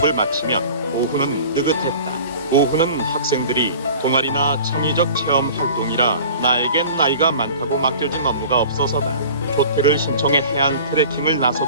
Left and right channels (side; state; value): both; inverted; correlation -0.42